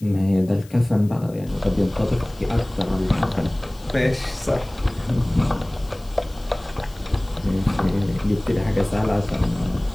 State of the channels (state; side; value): noise; left; hiss, 25 dB below the sound